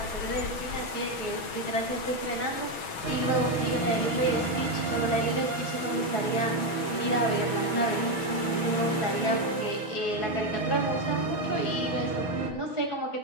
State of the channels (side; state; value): right; late; 6.1 ms